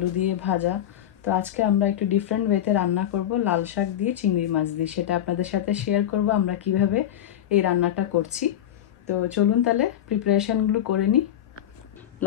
দিয়ে ভাজা। তো আজকে আমরা একটু ডিফারেন্ট ওয়েতে রান্না করব, লাল শাক দিয়ে চিংড়ি মাছ দিয়ে। সেটা আপনাদের সাথে শেয়ার করব আমরা কিভাবে এই রান্নাটা করছি। তো চলুন তাহলে প্রিপারেশনগুলো করে নিই।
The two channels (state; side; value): quieter; right; 11.1 dB